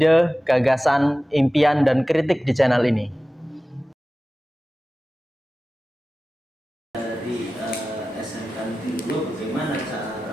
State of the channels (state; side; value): normal; both; correlation 0.96